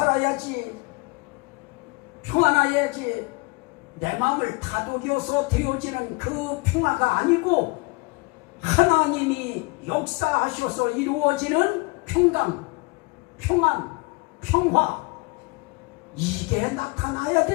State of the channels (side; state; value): right; quieter; 27.9 dB